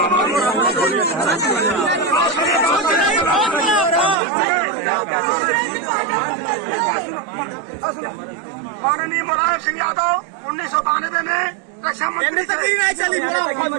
माननीय मुलायम सिंह यादव 1992 में रक्षा मंत्री चली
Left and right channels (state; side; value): drops out; left; at 4.2 s